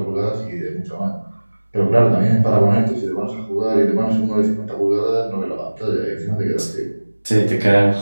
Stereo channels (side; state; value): both; inverted; correlation -1.00